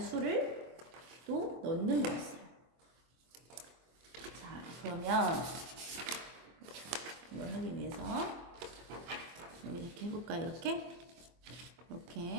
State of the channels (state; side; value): late; left; 24 ms